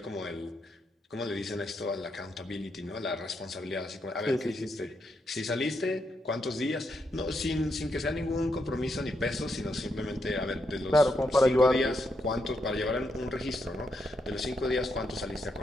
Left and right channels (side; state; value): both; normal; correlation 0.81